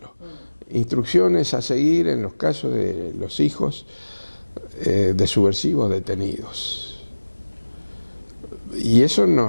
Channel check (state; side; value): inverted; both; correlation -1.00